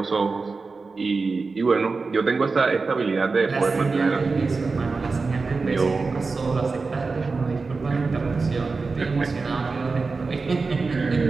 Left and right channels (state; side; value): quieter; left; 4.2 dB